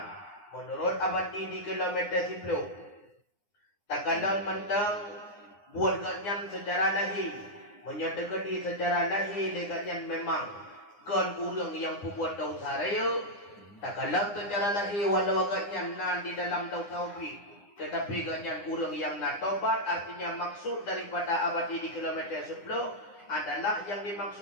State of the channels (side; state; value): right; late; 9.8 ms